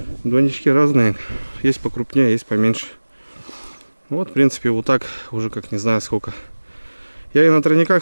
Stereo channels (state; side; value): inverted; both; correlation -1.00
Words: Двойнички разные, есть покрупнее, есть поменьше. Вот, в принципе, вот так уже как не знаю сколько. Я и на